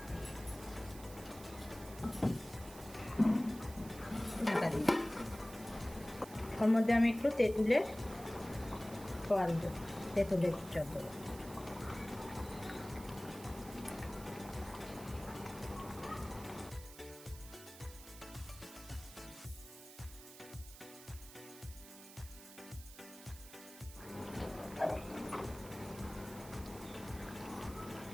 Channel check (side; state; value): right; noise; hiss, 16 dB below the sound